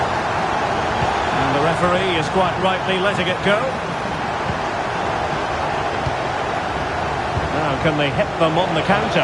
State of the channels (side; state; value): both; identical; correlation 1.00